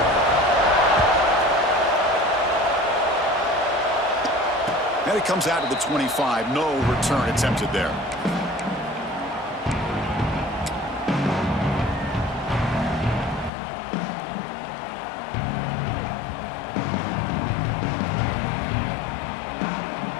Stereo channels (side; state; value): right; drops out; at 13.5 s